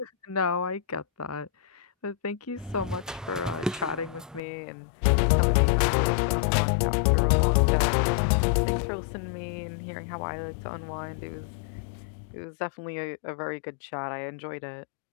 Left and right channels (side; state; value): right; drops out; at 4.4 s